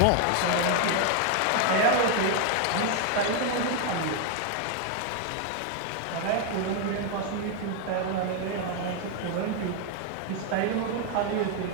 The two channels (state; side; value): different; both; correlation 0.01